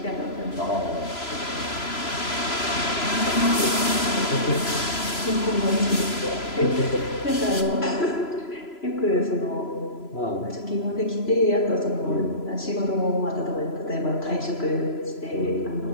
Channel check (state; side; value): late; right; 3.0 ms